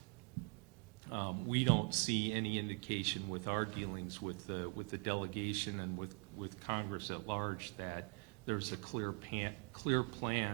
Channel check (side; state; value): left; quieter; 36.8 dB